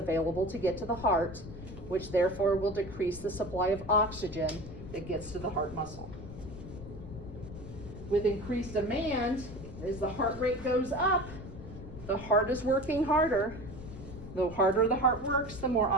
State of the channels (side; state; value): left; noise; rumble, 12 dB below the sound